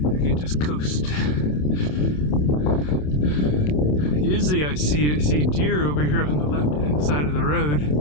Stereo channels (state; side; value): late; right; 27 ms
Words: just coast. Usually I see deer over here on the left-hand side of the road,